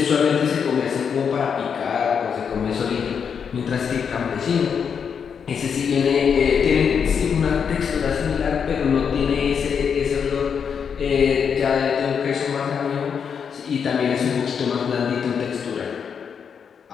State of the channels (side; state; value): right; quieter; 6.9 dB